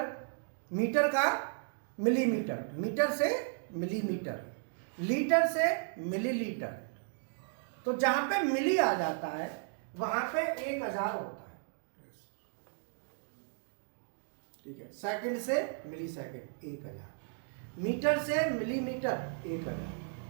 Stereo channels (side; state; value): left; silent; 55 dB below the other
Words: मीटर का मिलीमीटर, मीटर से मिलीमीटर, लीटर से मिलीलीटर। तो जहां पे मिली आ जाता है वहां पे 1000 होता है। ठीक है, सेकंड से मिली सेकंड 1000, मीटर से मिलीमीटर 1000,